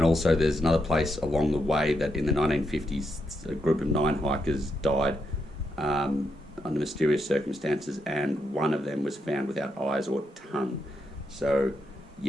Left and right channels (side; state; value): both; normal; correlation 0.82